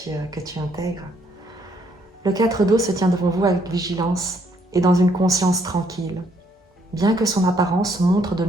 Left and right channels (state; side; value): normal; both; correlation 0.69